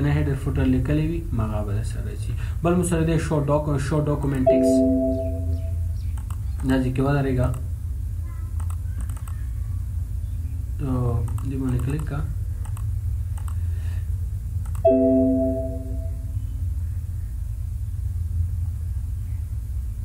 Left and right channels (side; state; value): both; identical; correlation 1.00